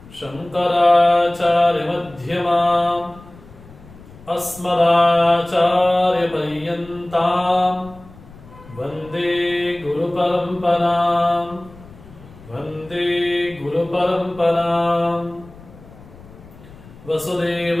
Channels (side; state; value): left; noise; rumble, 21 dB below the sound